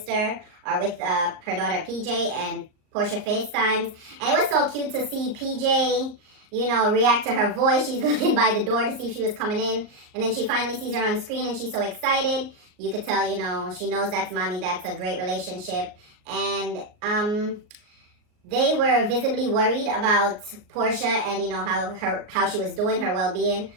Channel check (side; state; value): left; late; 38 ms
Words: are with her daughter PJ, and Portia FaceTimes. And it was so cute to see PJ, you know, react to her voice. She's looking by the door to see if she was coming in. And then she finally sees her on screen and she's so excited. You could tell, you know, she knows that's mommy. That's a great relationship. And they were visibly worried about Portia and, you know, how she was doing, her well-being,